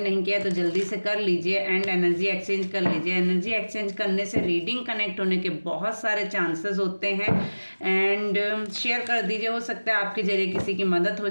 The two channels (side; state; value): both; inverted; correlation -1.00